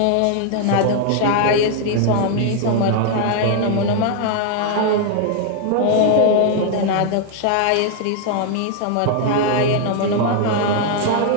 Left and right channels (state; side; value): different; both; correlation 0.00